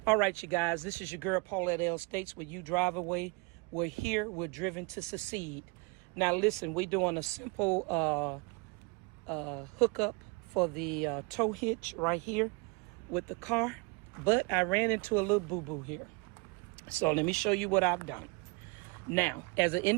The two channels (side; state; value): left; quieter; 28.8 dB